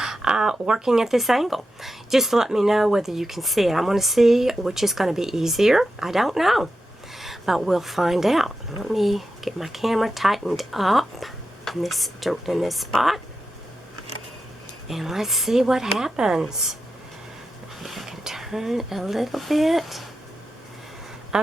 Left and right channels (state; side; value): normal; both; correlation 0.89